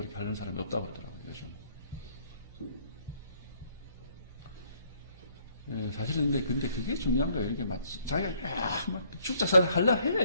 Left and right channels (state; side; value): inverted; both; correlation -0.64